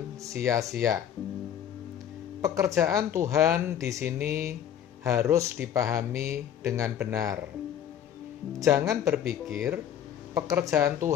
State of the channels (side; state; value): right; quieter; 9.8 dB